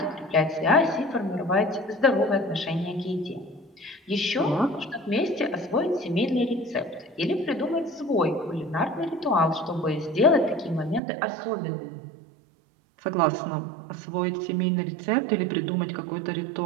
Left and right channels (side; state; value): left; drops out; at 11.0 s